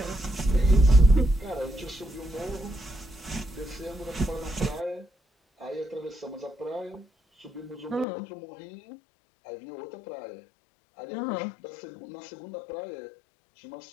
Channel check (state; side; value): drops out; right; at 8.1 s